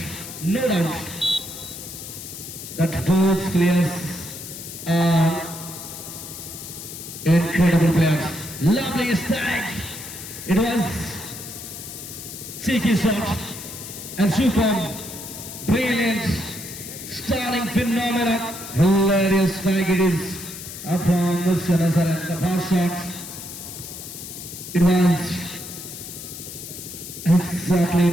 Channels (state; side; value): noise; left; hiss, 11 dB below the sound